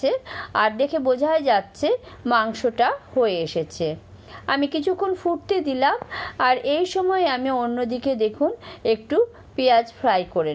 আর দেখে বোঝাই যাচ্ছে মাংসটা হয়ে এসেছে। আমি কিছুক্ষণ ফুটতে দিলাম, আর এই সময় আমি অন্যদিকে দেখুন একটু পেঁয়াজ ফ্রাই করে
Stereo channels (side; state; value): both; identical; correlation 1.00